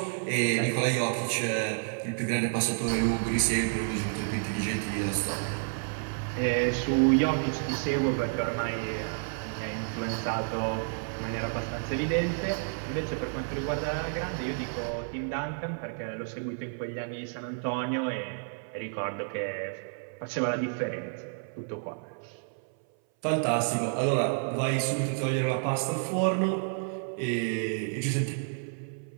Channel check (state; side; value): silent; left; 58 dB below the other